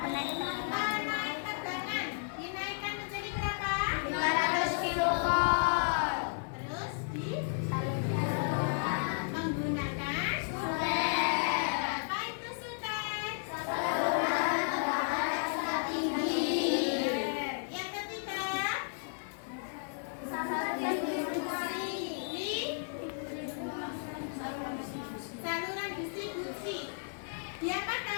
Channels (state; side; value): silent; right; digital silence